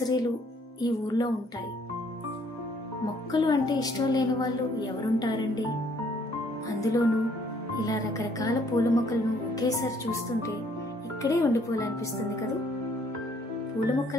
ఈ ఊర్లో ఉంటాయి. మొక్కలు అంటే ఇష్టం లేని వాళ్ళు ఎవరుంటారండి? అందులోనూ ఇలా రకరకాల పూల మొక్కలను ఒకేసారి చూస్తుంటే ఇక్కడే ఉండిపోవాలనిపిస్తుంది కదా. పూల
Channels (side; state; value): both; normal; correlation 0.64